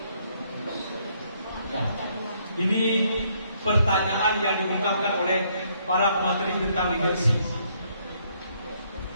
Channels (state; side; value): inverted; both; correlation -0.70